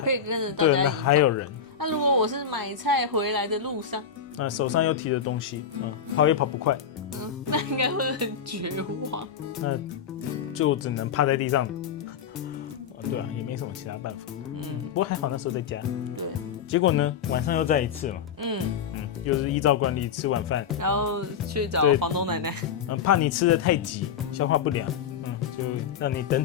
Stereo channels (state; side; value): quieter; right; 7.3 dB